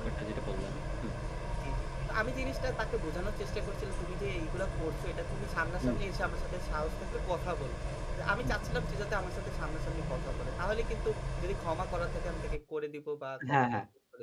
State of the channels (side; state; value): both; identical; correlation 1.00